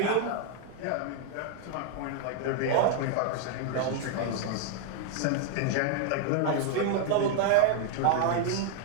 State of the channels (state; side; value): different; both; correlation 0.00